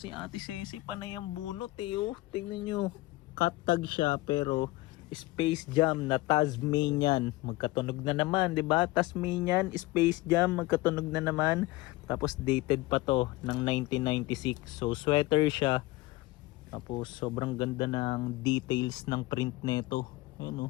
Ate Ceci panay ang bunot oh. Tingnan nyo. Cut tag siya pero Space Jam na Tasmanian. Magkatunog na naman, 'di ba? Tasmanian, Space Jam, magkatunog na naman. Tapos dated pa to ng 1996. So sweater siya. Tapos sobrang ganda ng details ng print nito.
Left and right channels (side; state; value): right; quieter; 19.9 dB